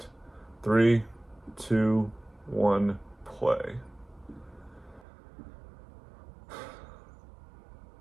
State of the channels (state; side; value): drops out; left; at 5.1 s